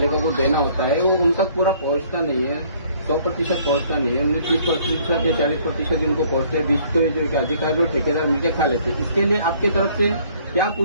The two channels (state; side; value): inverted; both; correlation -0.60